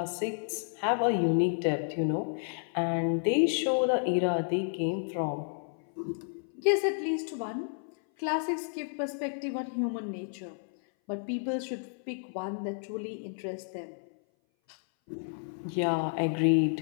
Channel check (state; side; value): silent; right; 57 dB below the other